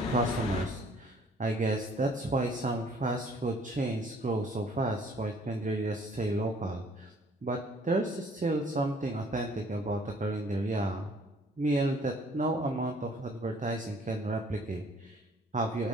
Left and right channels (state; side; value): normal; both; correlation 0.58